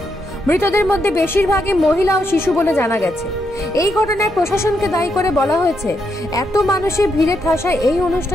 মৃতদের মধ্যে বেশিরভাগই মহিলা ও শিশু বলে জানা গেছে। এই ঘটনায় প্রশাসনকে দায়ী করে বলা হয়েছে, এত মানুষের ভিড়ে ঠাসায় এই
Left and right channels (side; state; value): both; normal; correlation 0.80